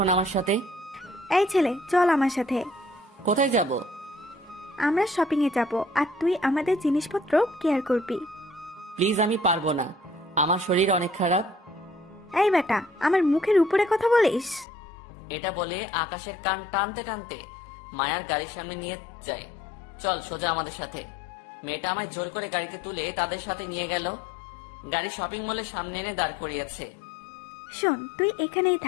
আমার সাথে। এই ছেলে, চল আমার সাথে। কোথায় যাব? আমরা শপিং এ যাব, আর তুই আমাদের জিনিসপত্র কেয়ার করবি। প্লিজ, আমি পারবো না, আমার শরীর অনেক খারাপ। এই বেটা, আমার মুখের উপরে কথা বলিস? এটা বলে আকাশের কান টানতে টানতে মায়ার গাড়ির সামনে নিয়ে যায়। চল সোজা আমাদের সাথে। মেয়েটা আমায় জোর করে গাড়িতে তুলে তাদের সাথে নিয়ে গেল। গাড়ি শপিং মলের সামনে এনে দাঁড় করিয়েছে। শোন, তুই এখানেই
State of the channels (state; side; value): drops out; right; at 14.7 s